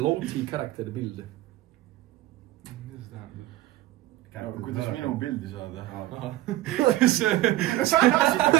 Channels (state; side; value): quieter; left; 16.0 dB